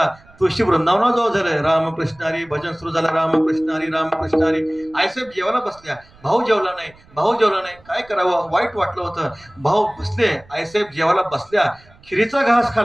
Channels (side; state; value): right; noise; rumble, 27 dB below the sound